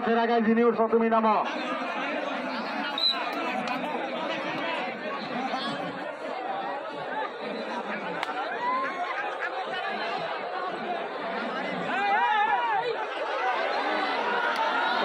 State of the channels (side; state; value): both; identical; correlation 1.00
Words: আগায় যিনি উঠছ তুমি নামো।